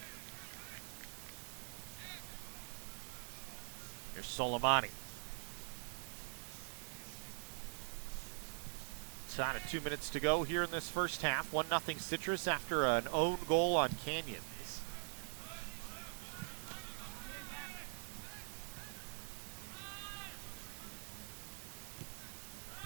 Here's Soleimani. Out of 2 minutes to go here in this first half. 1-0 Citrus after an own goal on Canyons.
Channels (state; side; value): silent; left; digital silence